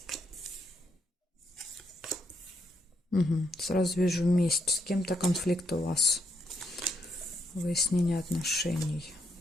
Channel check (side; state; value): both; normal; correlation 0.77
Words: Сразу вижу месть. С кем-то конфликт у вас. Выяснение отношений.